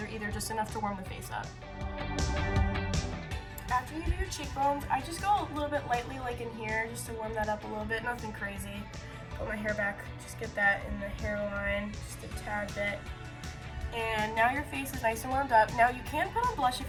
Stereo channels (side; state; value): both; identical; correlation 1.00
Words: either, just enough to warm the face up. After you do your cheekbones, I just go a little bit lightly like in here just to warm that up a little bit, nothing crazy. Put my hair back, just get that in the hairline, just a tad bit. And now your face is nice and warmed up. Now you can put on blush